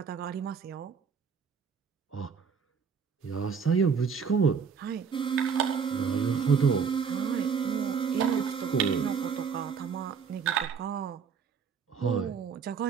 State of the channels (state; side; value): quieter; left; 6.3 dB